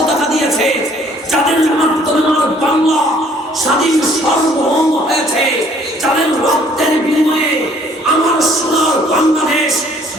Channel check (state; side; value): normal; both; correlation 0.59